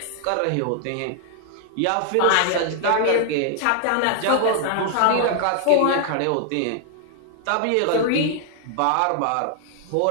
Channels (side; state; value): both; different; correlation 0.00